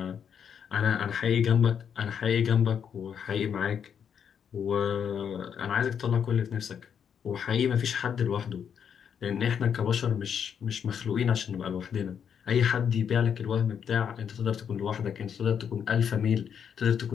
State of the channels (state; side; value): quieter; right; 7.8 dB